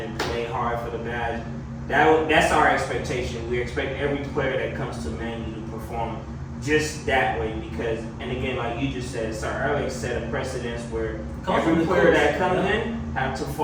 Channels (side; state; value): both; identical; correlation 1.00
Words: and play hard for the badge, that's our expectation. We expect every player that comes to Man U to perform just that way because, and again, like you just said, Sir Alex set a precedence where every player that comes in have to